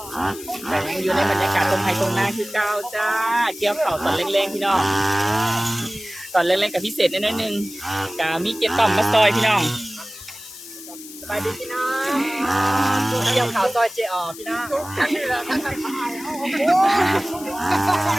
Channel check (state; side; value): noise; left; hiss, 15 dB below the sound